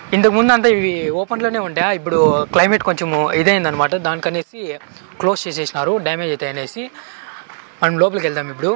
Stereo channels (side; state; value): left; silent; 68 dB below the other